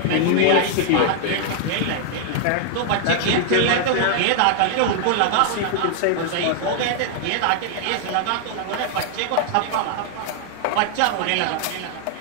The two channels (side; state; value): both; different; correlation 0.00